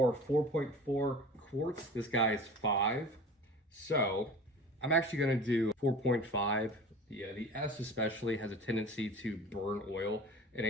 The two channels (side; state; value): both; normal; correlation 0.39